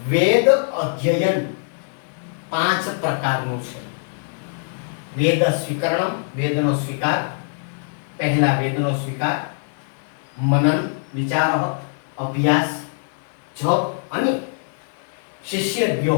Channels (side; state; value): right; silent; digital silence